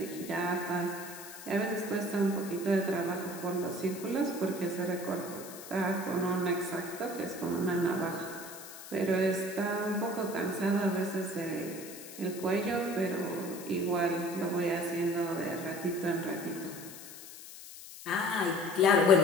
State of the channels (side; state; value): left; noise; hiss, 14 dB below the sound